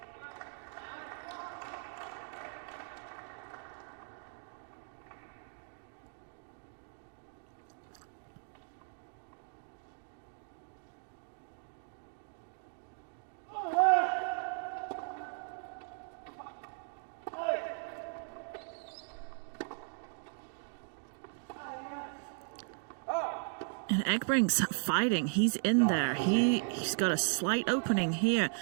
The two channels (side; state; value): left; silent; 53 dB below the other